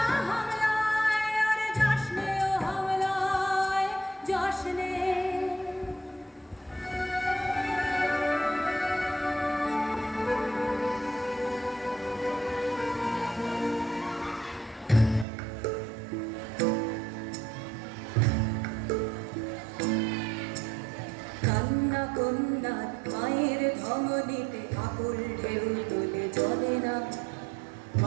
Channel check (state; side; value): drops out; left; at 15.2 s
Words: হামলায়। আরে যাসনে ও হামলায়, যাসনে। কান্না কন্যার মায়ের ধমনীতে আকুল ঢেউ তোলে জ্বলে না,